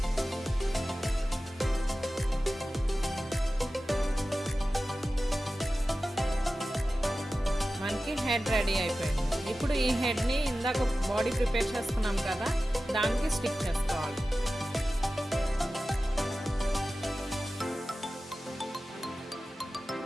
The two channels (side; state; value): both; normal; correlation 0.95